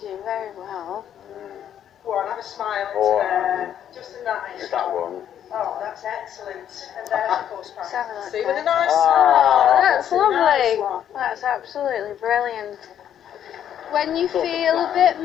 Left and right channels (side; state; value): right; quieter; 9.9 dB